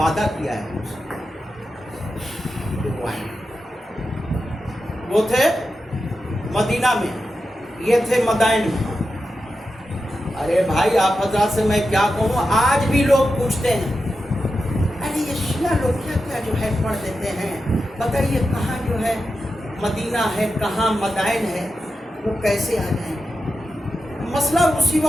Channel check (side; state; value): both; normal; correlation 0.90